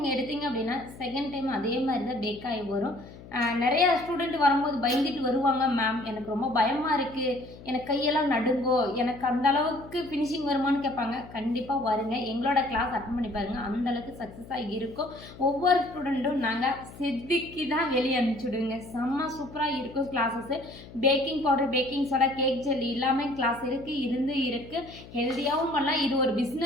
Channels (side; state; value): left; noise; hum, 17 dB below the sound